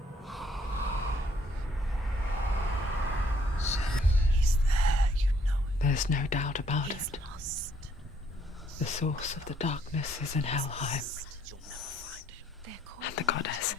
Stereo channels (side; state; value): both; normal; correlation 0.66